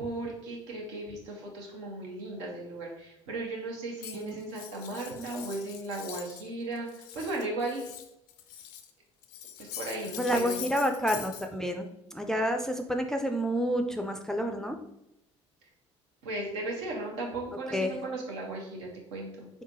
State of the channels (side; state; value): both; normal; correlation 0.60